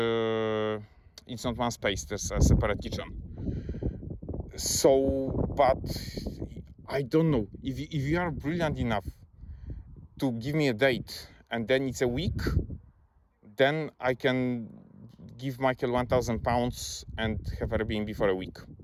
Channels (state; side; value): identical; both; correlation 1.00